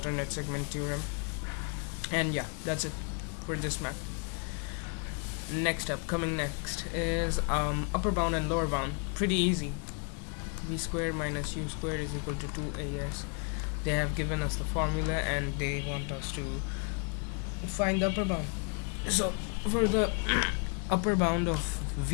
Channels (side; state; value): right; quieter; 39.7 dB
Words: segment theorem. And yeah, that's it for this math. Coming next is upper bound and lower bound. Pretty easy. V squared minus u squared is equal to 2as. They have given us the formula and they want us to find the upper bound. So for the upper bound of